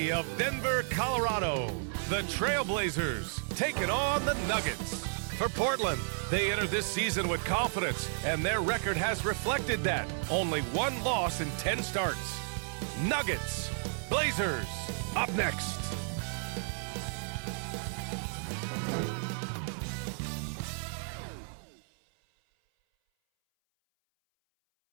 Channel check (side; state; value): left; silent; 56 dB below the other